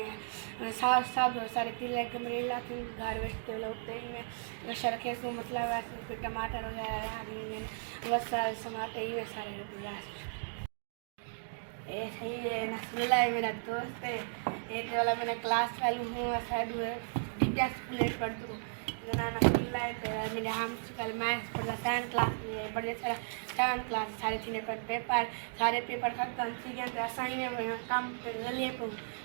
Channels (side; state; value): left; silent; digital silence